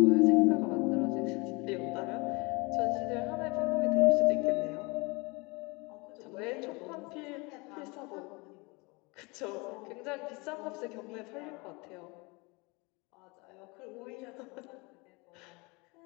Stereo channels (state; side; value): quieter; right; 26.9 dB